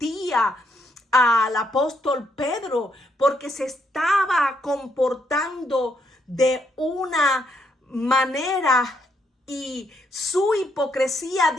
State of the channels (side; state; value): both; normal; correlation 0.75